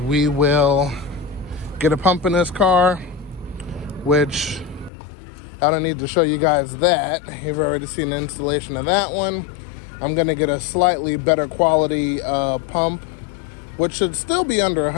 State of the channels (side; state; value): right; drops out; at 4.9 s